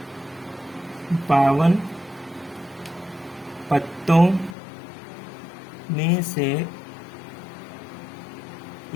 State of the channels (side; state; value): right; drops out; at 4.5 s